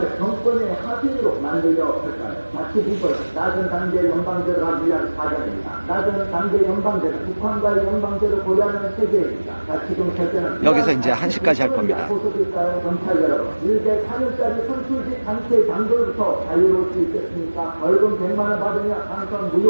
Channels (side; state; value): both; inverted; correlation -1.00